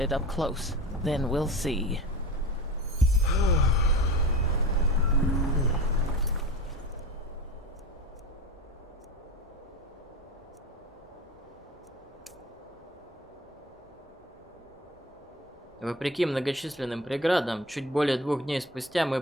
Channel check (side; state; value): both; normal; correlation 0.32